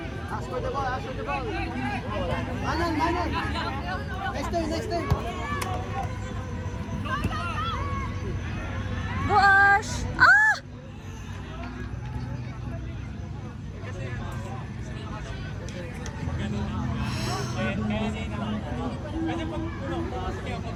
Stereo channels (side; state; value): both; identical; correlation 1.00